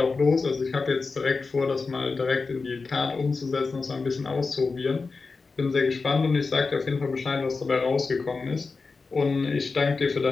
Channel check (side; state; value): right; quieter; 4.3 dB